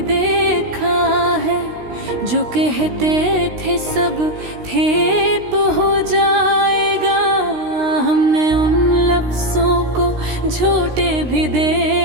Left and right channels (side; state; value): left; late; 16 ms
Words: देखा है। जो कहते थे सब ठेप हो जाएगा, हमने उन लफ्ज़ों को झूठे भी